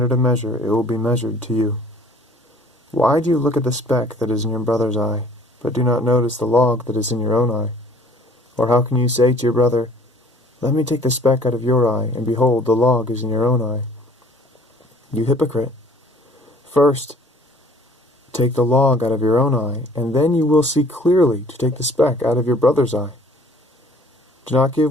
of measure it will be measured to you. Why do you look at the speck that is in your brother's eye, but do not notice the log that is in your own eye? Or how can you say to your brother, Let me take the speck out of your eye, and behold, the log is in your own eye? You hypocrite! First, take the log out of your own eye, and then you will see clearly to take the speck out of your brother's eye. Do not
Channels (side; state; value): both; normal; correlation 0.53